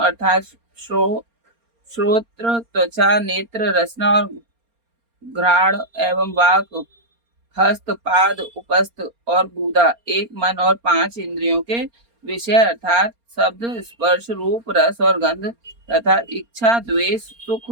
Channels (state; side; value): late; left; 4.3 ms